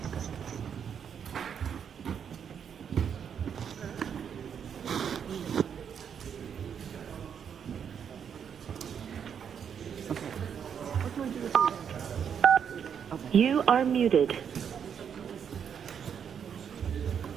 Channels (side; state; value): left; quieter; 7.8 dB